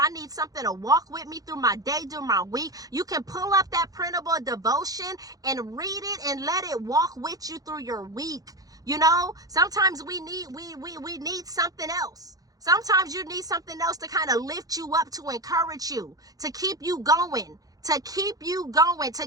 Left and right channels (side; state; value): left; late; 0.18 ms